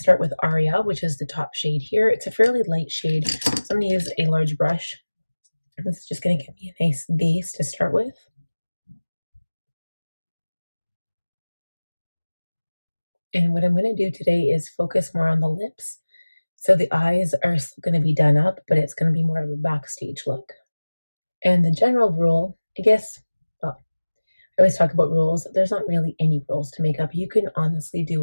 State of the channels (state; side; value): inverted; both; correlation -1.00